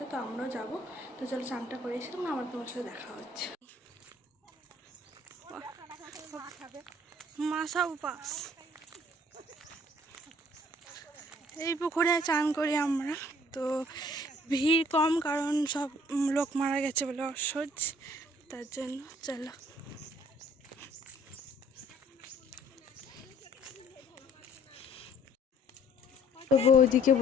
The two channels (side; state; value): both; normal; correlation 0.57